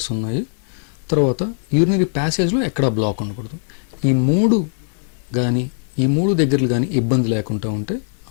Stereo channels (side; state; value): right; silent; digital silence